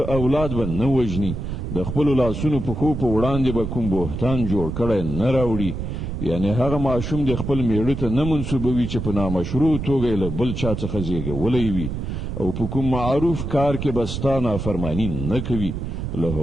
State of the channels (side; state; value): right; noise; rumble, 5 dB below the sound